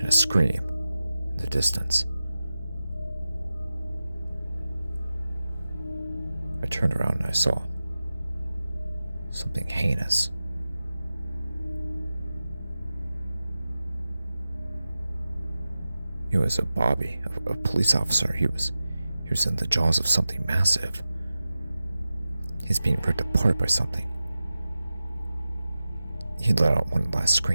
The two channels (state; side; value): inverted; both; correlation -0.94